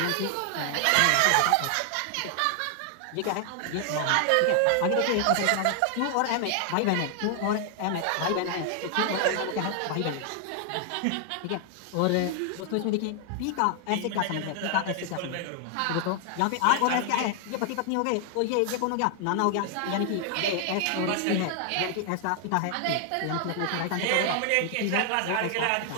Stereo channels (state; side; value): different; both; correlation 0.00